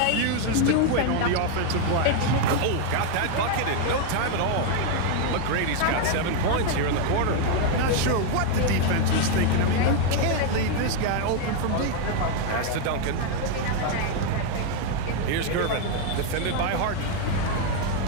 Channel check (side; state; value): both; different; correlation 0.00